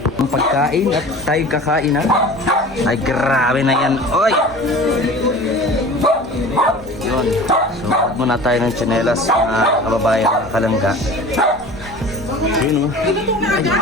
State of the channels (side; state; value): both; normal; correlation 0.39